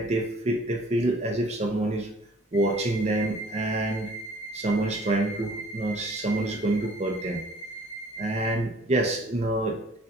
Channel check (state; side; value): normal; both; correlation 0.54